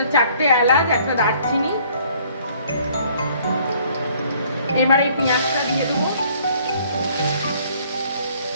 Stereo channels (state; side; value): inverted; both; correlation -0.59